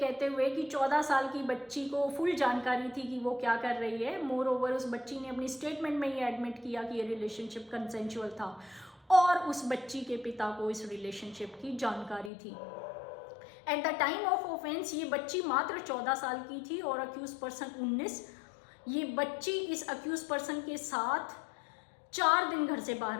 हुए कि 14 साल की बच्ची को फुल जानकारी थी कि वो क्या कर रही है। मोर ओवर उस बच्ची ने अपनी स्टेटमेंट में ये एडमिट किया कि ये रिलेशनशिप कंसेंशुअल था और उस बच्ची के पिता को इस रिलेशनशिप की जानकारी थी। At the time of offence ये बच्ची मात्र 14 साल की थी और अक्यूज पर्सन 19। ये बच्ची इस अक्यूज पर्सन के साथ 4 दिन घर से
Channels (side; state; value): right; drops out; at 12.3 s